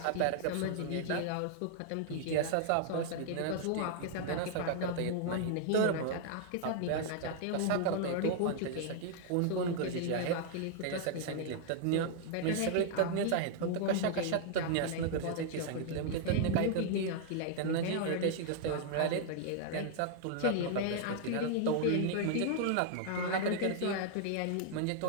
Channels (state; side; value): different; both; correlation 0.00